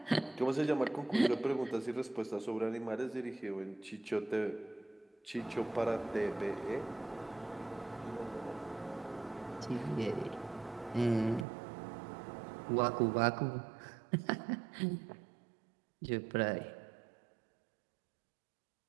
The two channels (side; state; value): left; drops out; at 11.5 s